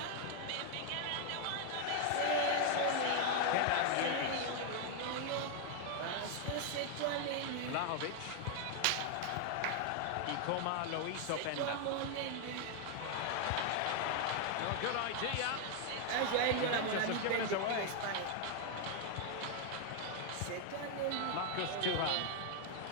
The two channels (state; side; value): different; both; correlation 0.00